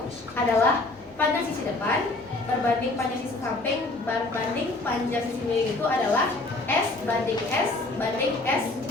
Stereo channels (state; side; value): quieter; right; 3.0 dB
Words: adalah panjang sisi depan berbanding panjang sisi samping berbanding panjang sisi miring itu adalah S banding S banding S